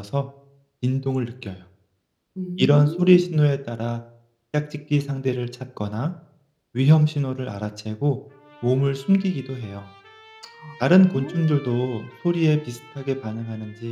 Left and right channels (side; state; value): both; identical; correlation 1.00